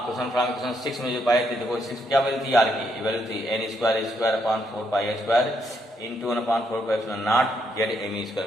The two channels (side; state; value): both; normal; correlation 0.76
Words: from equation 6 में जो पाए थे, देखो 6 क्या वैल्यू थी आर की, वैल्यू थी n² into 1/4πε0 Z M E